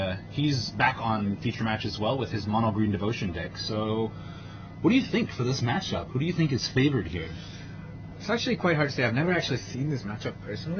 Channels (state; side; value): identical; both; correlation 1.00